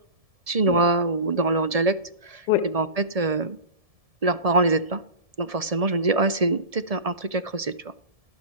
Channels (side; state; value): left; late; 1.7 ms